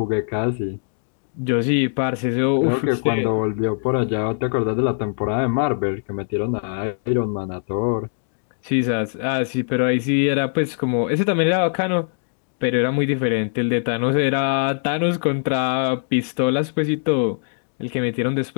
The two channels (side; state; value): right; silent; digital silence